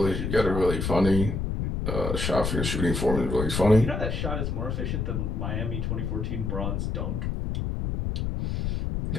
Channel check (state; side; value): noise; left; rumble, 1 dB below the sound